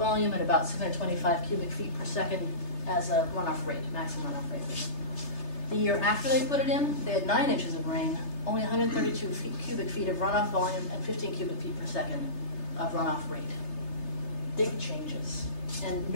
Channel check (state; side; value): late; right; 3.3 ms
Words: and about 625 cubic feet per second as a runoff rate, maximum runoff rate. The year after they put it in, they had 9 inches of rain, only 132 cubic feet of runoff volume, and 15 cubic feet per second of runoff rate. Big changes. And